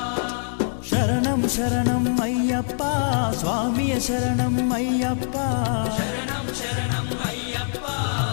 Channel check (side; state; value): right; silent; digital silence